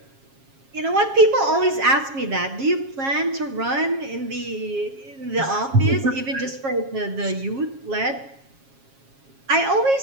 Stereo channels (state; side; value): late; left; 7.3 ms